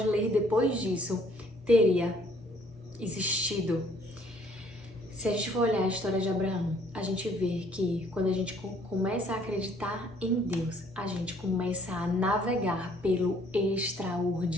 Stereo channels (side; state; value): both; normal; correlation 0.61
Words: ler depois disso teria existido. Se a gente for olhar a história de Abraão, a gente vê que quando a gente começa a acreditar em Deus, a gente começa a navegar pelo